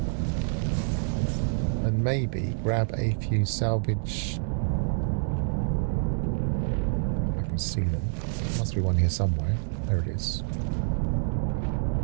And maybe grab a few salvage... I can see them. There must be one here somewhere. There it is.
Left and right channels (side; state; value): left; silent; digital silence